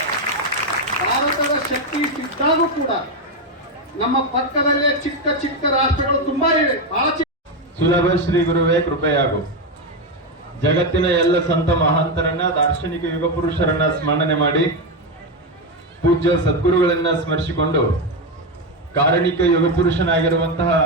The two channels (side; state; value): both; normal; correlation 0.09